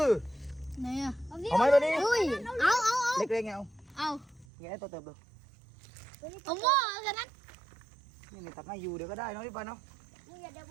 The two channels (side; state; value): left; drops out; at 4.5 s